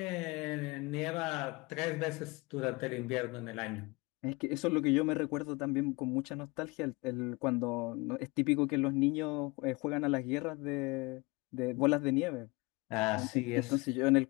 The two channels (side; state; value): right; quieter; 25.5 dB